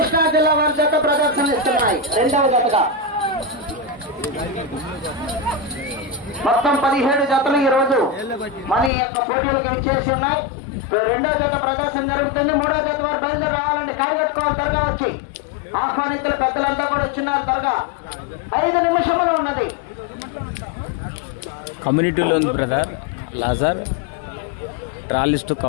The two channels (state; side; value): drops out; right; at 8.9 s